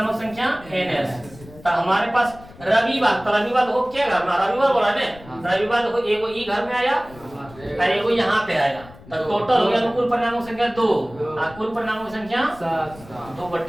संख्या एनएस। तो हमारे पास रविवार, तो रविवार देखो क्या घर में? रविवार बोला ना, रविवार देखो एगो ई घर में आया और एगो यहाँ पे आया। तो टोटल हो गया अनुकूल परिणामों संख्या 2, अनुकूल परिणामों की संख्या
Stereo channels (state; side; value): noise; left; rumble, 20 dB below the sound